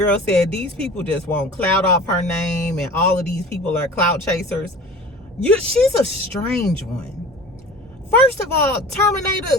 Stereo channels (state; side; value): normal; both; correlation 0.39